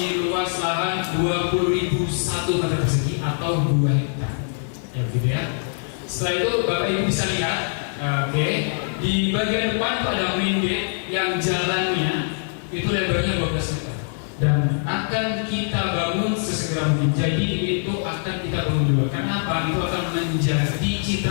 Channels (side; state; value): right; silent; digital silence